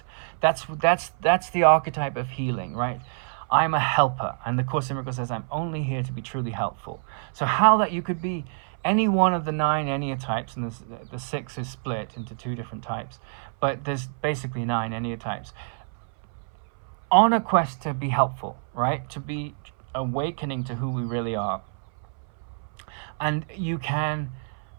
that's the archetype of healing, right? I'm a helper, and the Course in Miracles says I'm only here to be truly helpful. So how that you could be any one of the 9 Enneatypes, and the 6 is split into 2 different types, but there's basically 9 Enneatypes, on a quest to be helpful, right? To be awakening to who we really are. And you can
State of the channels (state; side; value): silent; left; 60 dB below the other